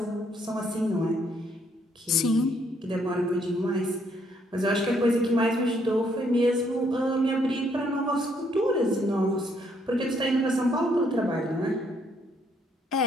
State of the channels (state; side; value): normal; both; correlation 0.70